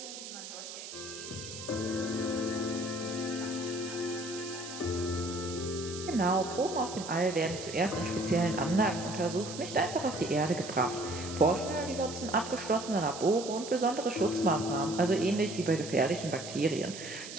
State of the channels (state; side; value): noise; right; hiss, 10 dB below the sound